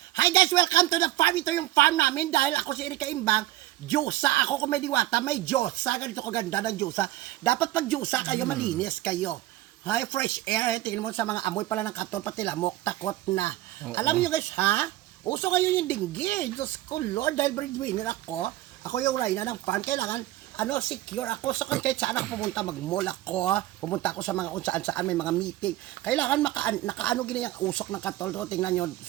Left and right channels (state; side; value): quieter; left; 15.7 dB